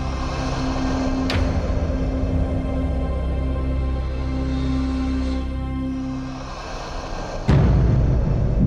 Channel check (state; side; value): identical; both; correlation 1.00